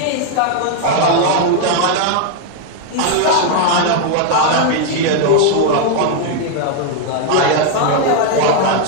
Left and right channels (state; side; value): different; both; correlation 0.00